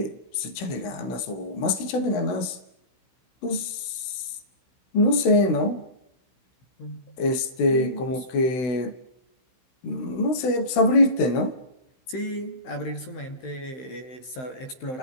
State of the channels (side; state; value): right; late; 16 ms